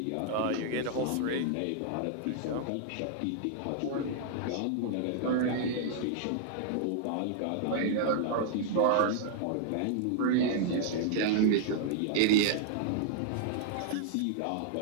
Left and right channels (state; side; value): different; both; correlation -0.01